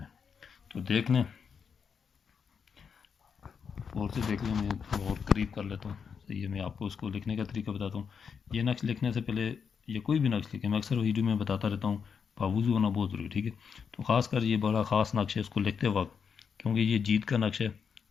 تو دیکھ لیں اور سے دیکھ لیں، میں اور قریب کر لیتا ہوں، صحیح ہے۔ میں آپ کو اس کو لکھنے کا طریقہ بتاتا ہوں۔ یہ نقش لکھنے سے پہلے یہ کوئی بھی نقش لکھیں، میں اکثر ویڈیو میں بتاتا رہتا ہوں، باوضو ہونا بہت ضروری، ٹھیک ہے۔ تو خاص کر یہ بڑا خاص نقش ہے اس کو لکھتے وقت، کیونکہ یہ جیت کا نقش ہے،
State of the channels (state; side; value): quieter; right; 6.5 dB